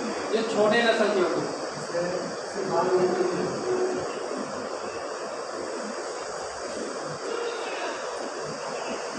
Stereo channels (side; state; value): both; identical; correlation 1.00